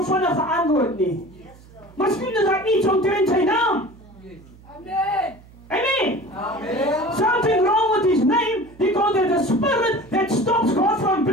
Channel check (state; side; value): noise; right; hum, 23 dB below the sound